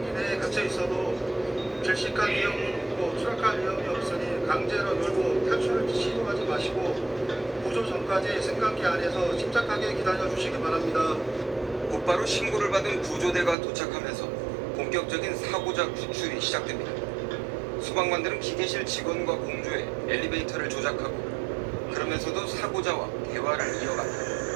내에 갇혀 있어도 질식할 위험은 없고 추락할 위험이 없으니 강제로 놀고 탈출을 시도하지 마시고 구조 전까지 승강기 안에서 침착하게 기다려 주시기 바랍니다. 곧바로 신고를 받은 구조대가 도착하면서 본격적인 사고자 구출이 시작됩니다. 소방관들은 기계실 직원과 공조해 엘리베이터를 조작하고 그러면서도 사고자와 대화를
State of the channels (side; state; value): left; drops out; at 13.6 s